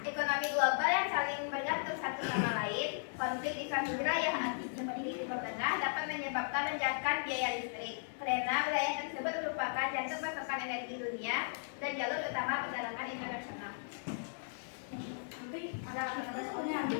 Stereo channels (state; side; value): silent; right; 53 dB below the other